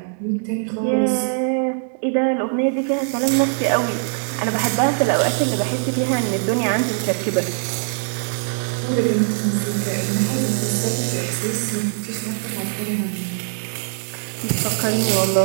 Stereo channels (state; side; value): silent; left; digital silence